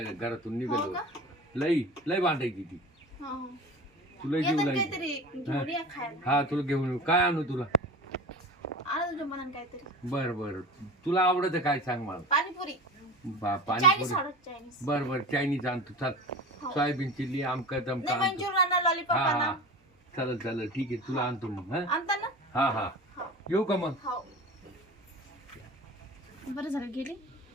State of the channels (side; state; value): both; normal; correlation 0.33